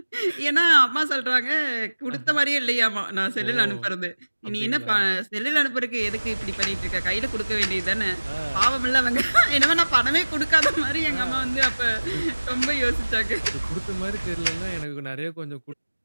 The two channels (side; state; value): both; inverted; correlation -1.00